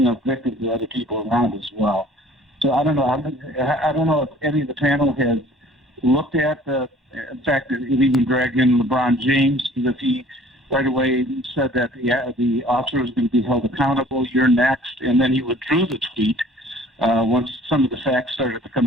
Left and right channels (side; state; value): both; normal; correlation 0.52